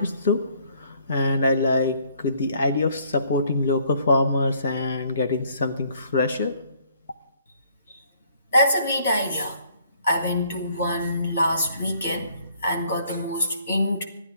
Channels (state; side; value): inverted; both; correlation -0.63